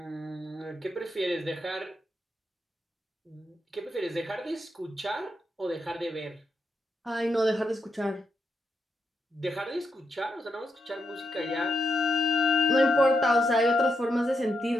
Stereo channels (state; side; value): normal; both; correlation 0.82